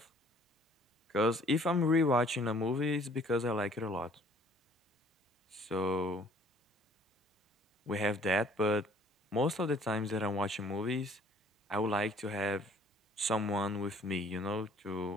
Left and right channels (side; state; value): both; normal; correlation 0.57